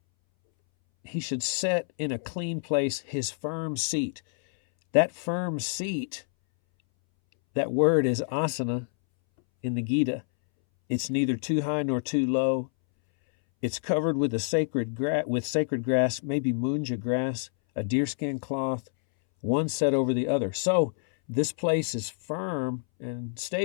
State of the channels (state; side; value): silent; right; 60 dB below the other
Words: he should set in a clean place his firm seat, that firm seat, that word is asana in the Gita. It's neither too high nor too low. It's covered with sacred grass, maybe munja grass, a deerskin cloth, one set over the other. So this place is firm and